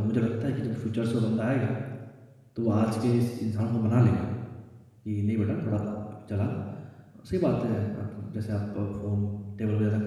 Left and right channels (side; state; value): both; identical; correlation 1.00